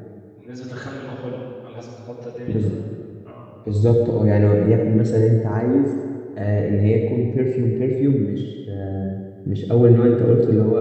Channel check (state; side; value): identical; both; correlation 1.00